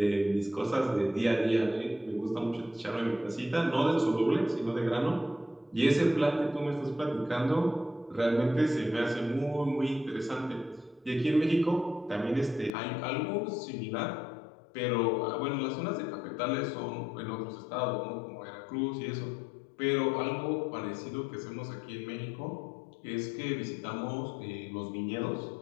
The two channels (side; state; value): right; drops out; at 12.7 s